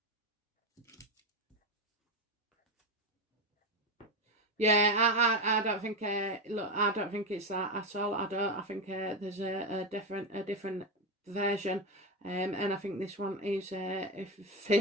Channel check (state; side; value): normal; both; correlation 0.13